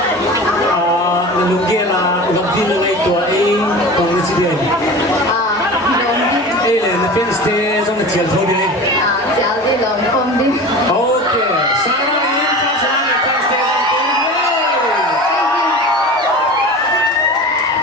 Na lung ge la lung di na ngai tu ai bang na chi de. Ai le na pen ste zong na chial tho de. Chào đi lòng không đi. Okay, Sarah in first round and first stage on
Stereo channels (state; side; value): normal; both; correlation 0.34